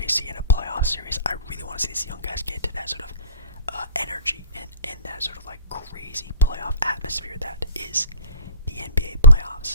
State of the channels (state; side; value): inverted; both; correlation -0.40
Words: in a playoff series. I really want to see these young guys get to that sort of energy and that sort of like crazy playoff atmosphere that is the NBA